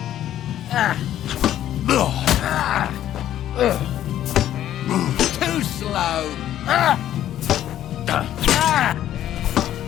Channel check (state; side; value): quieter; right; 11.9 dB